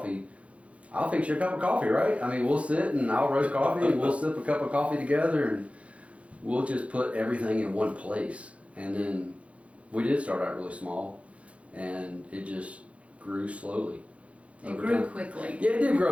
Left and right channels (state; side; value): late; left; 0.063 ms